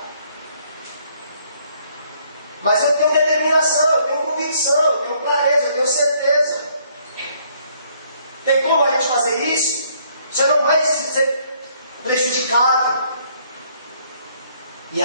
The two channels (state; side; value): inverted; both; correlation -0.66